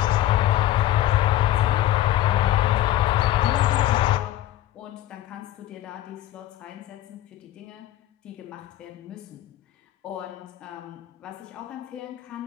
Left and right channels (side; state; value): right; quieter; 13.8 dB